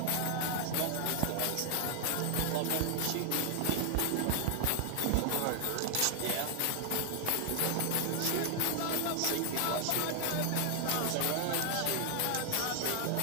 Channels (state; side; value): different; both; correlation 0.00